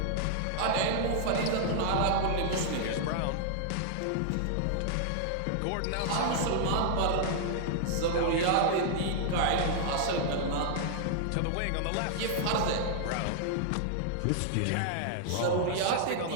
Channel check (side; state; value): both; different; correlation -0.01